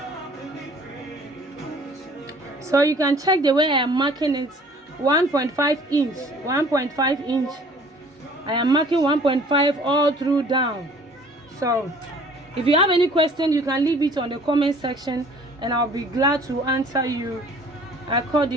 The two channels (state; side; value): normal; both; correlation 0.53